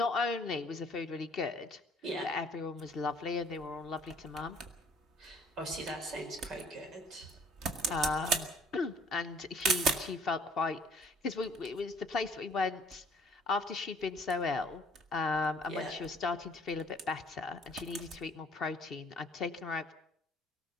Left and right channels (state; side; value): normal; both; correlation 0.57